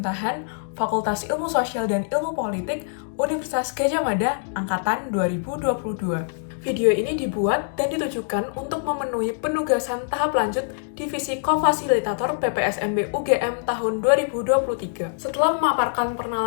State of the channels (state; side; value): silent; right; digital silence